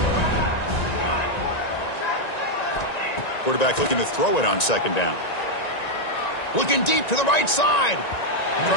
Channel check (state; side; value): late; right; 1.9 ms